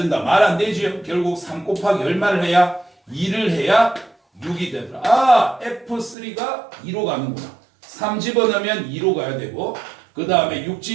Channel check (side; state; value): left; drops out; at 6.2 s